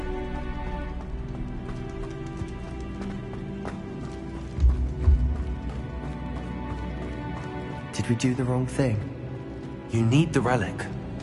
Did we do the wrong thing? You need the relic.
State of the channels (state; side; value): identical; both; correlation 1.00